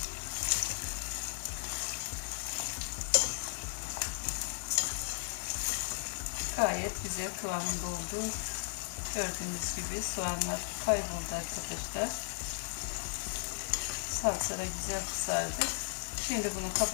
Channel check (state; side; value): silent; right; digital silence